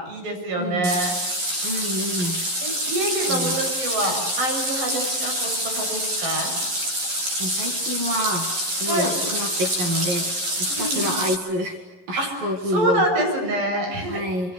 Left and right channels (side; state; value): left; late; 11 ms